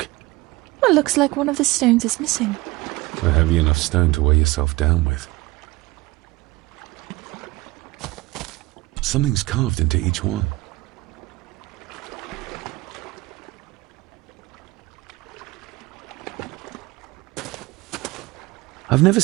Well, looks like one of the stones is missing. A heavy enough stone to weigh yourself down with. Something's carved into each one. I've never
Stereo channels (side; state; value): left; quieter; 20.8 dB